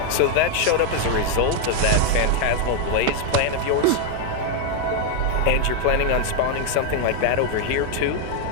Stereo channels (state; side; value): different; both; correlation 0.01